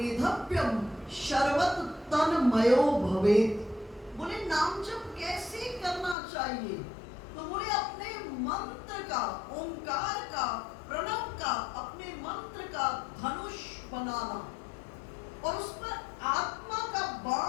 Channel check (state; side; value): drops out; right; at 6.2 s